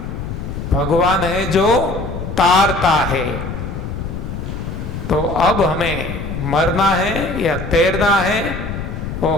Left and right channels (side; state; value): left; noise; rumble, 6 dB below the sound